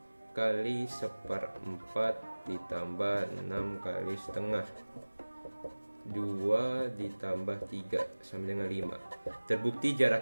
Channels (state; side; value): inverted; both; correlation -1.00